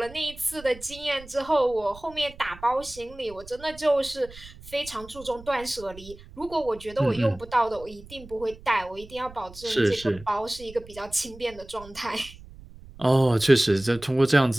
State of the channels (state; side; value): noise; right; rumble, 19 dB below the sound